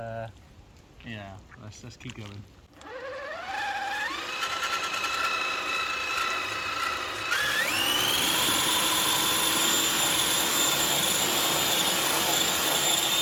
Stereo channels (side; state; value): both; identical; correlation 1.00